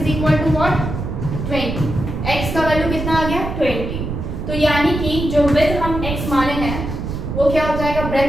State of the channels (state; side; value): noise; right; rumble, 5 dB below the sound